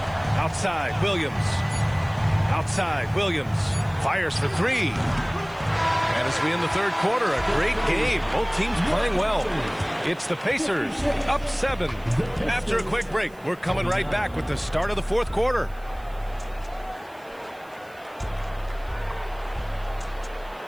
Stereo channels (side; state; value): right; noise; hiss, 28 dB below the sound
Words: Outside, Williams. Outside, Williams. Fires for three. And as we end the third quarter, a great game. Both teams playing well. It's the Pacers up 7. After a quick break, we're coming right back with the start of the fourth quarter.